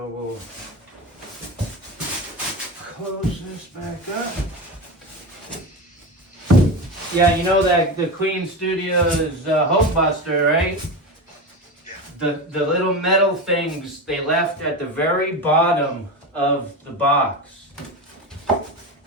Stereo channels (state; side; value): normal; both; correlation 0.22